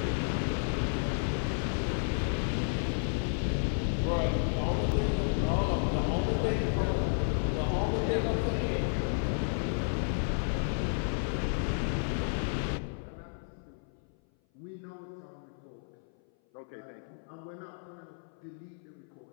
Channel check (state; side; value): silent; right; 56 dB below the other